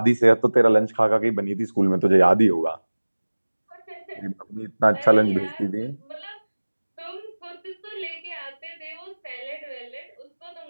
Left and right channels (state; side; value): inverted; both; correlation -1.00